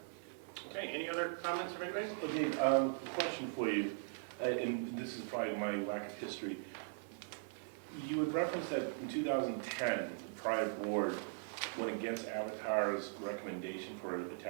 Okay, any other comments from anybody? Okay, question for you, and this is probably my lack of history. You had referenced that in 2010, the prior board went against Avatar's recommendation for a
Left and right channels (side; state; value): left; silent; 51 dB below the other